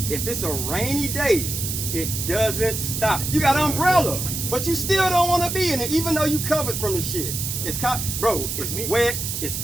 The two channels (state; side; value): noise; right; hiss, 4 dB below the sound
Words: if it's a rainy day, it doesn't stop. You got an umbrella, but you still don't want to be in it, even though you covered from the shit. It's wet, It's